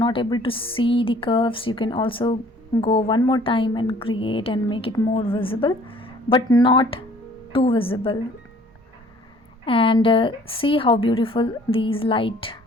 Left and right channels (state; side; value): normal; both; correlation 0.55